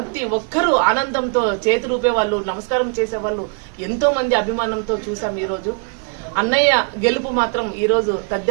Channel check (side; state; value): left; quieter; 38.2 dB